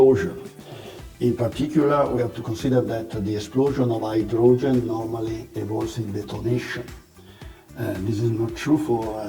In particular, we have to consider that the explosion of hydrogen normally involves in detonation. This is not true for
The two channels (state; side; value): identical; both; correlation 1.00